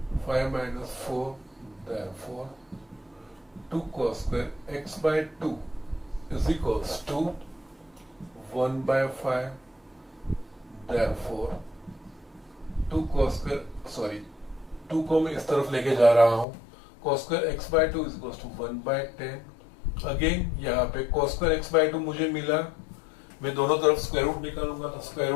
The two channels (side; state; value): right; drops out; at 16.4 s